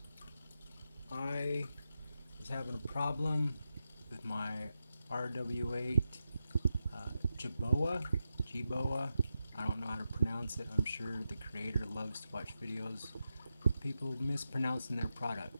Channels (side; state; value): both; inverted; correlation -0.88